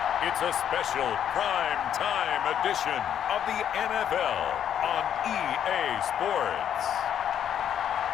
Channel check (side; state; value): right; quieter; 9.4 dB